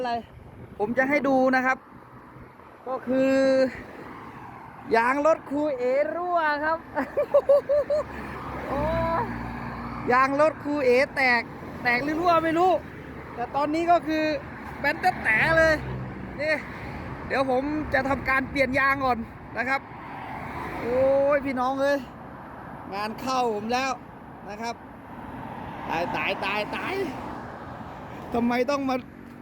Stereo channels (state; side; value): identical; both; correlation 1.00